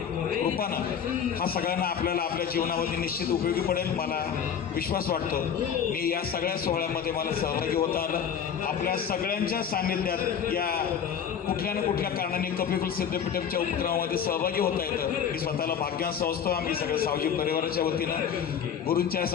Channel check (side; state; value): right; quieter; 7.9 dB